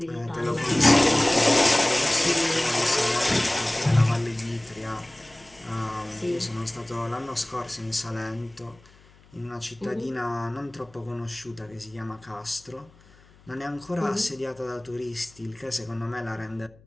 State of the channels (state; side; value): noise; left; hum, 27 dB below the sound